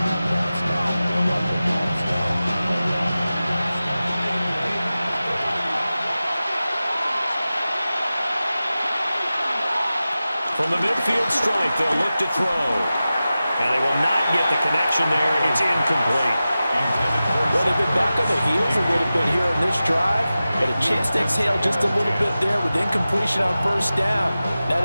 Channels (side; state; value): both; inverted; correlation -0.95